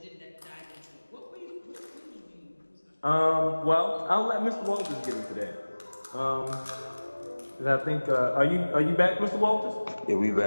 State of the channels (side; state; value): both; inverted; correlation -1.00